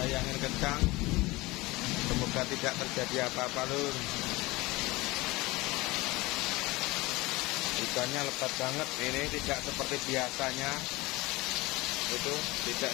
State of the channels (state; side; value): quieter; right; 21.6 dB